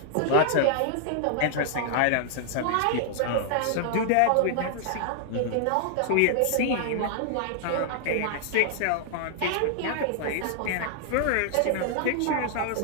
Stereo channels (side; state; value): both; different; correlation -0.01